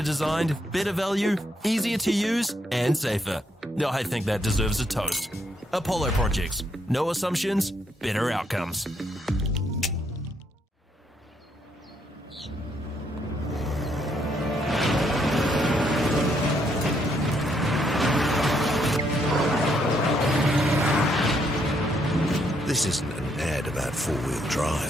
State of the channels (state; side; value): normal; both; correlation 0.74